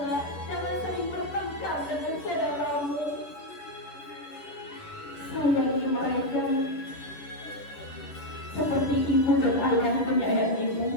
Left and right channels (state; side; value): late; right; 10 ms